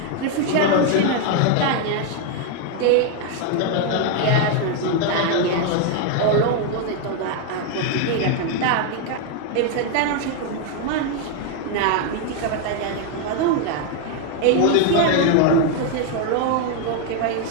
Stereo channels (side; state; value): both; different; correlation 0.01